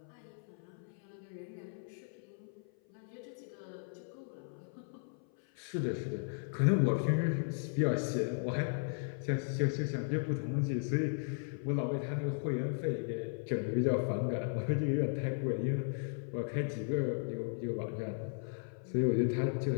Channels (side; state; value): right; silent; 54 dB below the other